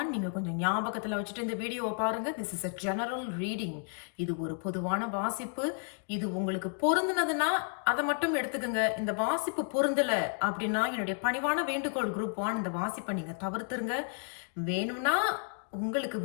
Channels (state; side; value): silent; right; 56 dB below the other